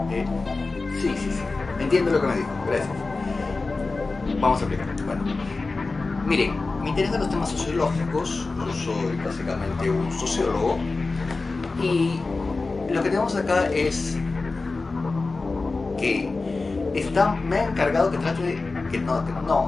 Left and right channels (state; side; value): quieter; right; 3.7 dB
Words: sí. Entiendo lo que me dijo. Gracias. Vamos a explicar. Bueno, miren, me interesan los temas sociológicos. Yo soy básicamente un sociólogo. Y lo que tenemos acá es que me ha encargado que trate,